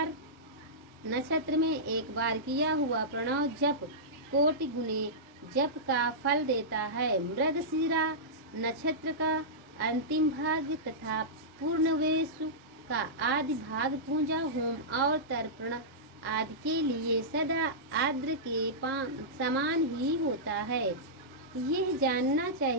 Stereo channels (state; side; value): normal; both; correlation -0.14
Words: में एक बार किया हुआ प्रणव जप कोटि गुने जप का फल देता है। मृगशिरा नक्षत्र का अंतिम भाग तथा पूर्णवेशु का आदि भाग पूजा होम और तर्पण आदि के लिए सदा आद्र के समान ही होता है। यह जानना